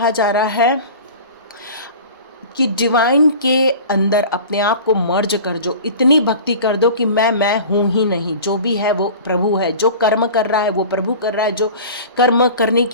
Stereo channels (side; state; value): both; inverted; correlation -0.38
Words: जा रहा है कि डिवाइन के अंदर अपने आप को मर्ज कर जो, इतनी भक्ति कर दो कि मैं हूँ ही नहीं, जो भी है वो प्रभु है, जो कर्म कर रहा है वो प्रभु कर रहा है, जो कर्म करने